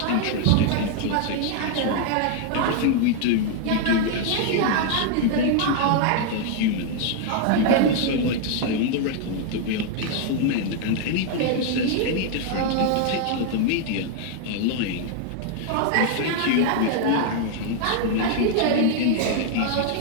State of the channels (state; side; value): different; both; correlation 0.00